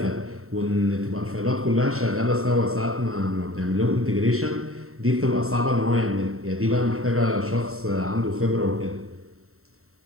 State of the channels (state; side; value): late; left; 0.63 ms